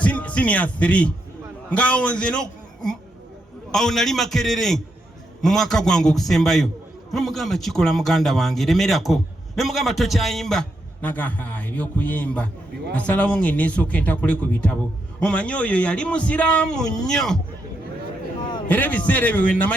senior 3 ngaawo nze awo nali Makerere mu mwaka gwange okusembayo nemugamba kikola muganda wange lemerako nemugamba tokyayimba naga ebyokuyimba nasalawo ng'eneesooka entakule ku bitabo. Omanyi oyo yali musiraamu nnyo era ebiseera ebyo we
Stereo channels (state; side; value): normal; both; correlation 0.81